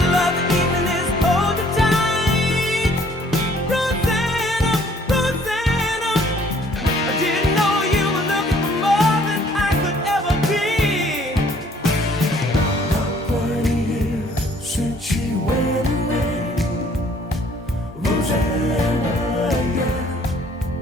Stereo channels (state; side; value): normal; both; correlation 0.59